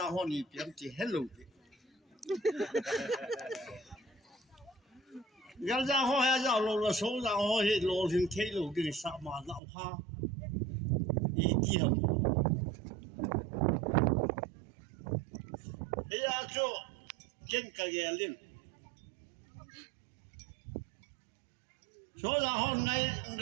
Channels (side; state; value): left; drops out; at 9.6 s